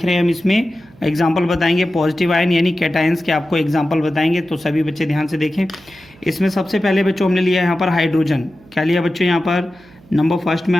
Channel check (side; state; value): right; noise; hum, 26 dB below the sound